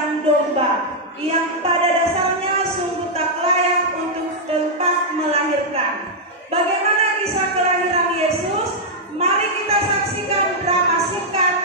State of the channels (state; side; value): normal; both; correlation -0.05